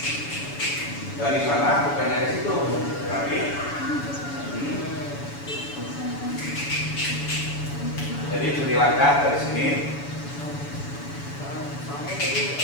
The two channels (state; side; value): late; right; 7.0 ms